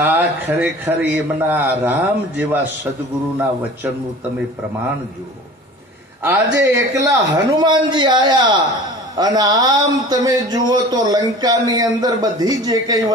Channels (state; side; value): normal; both; correlation 0.41